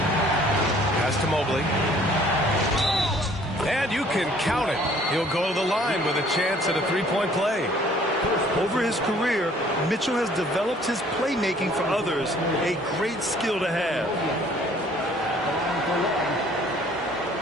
Pass to Mobley. And you can count it. He'll go to the line with a chance at a three-point play. Over his career, Mitchell has developed his playmaking for others, a great skill to have.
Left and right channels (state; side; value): normal; both; correlation 0.57